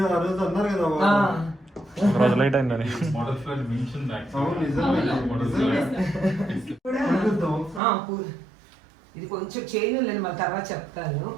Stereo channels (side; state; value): left; drops out; at 7.8 s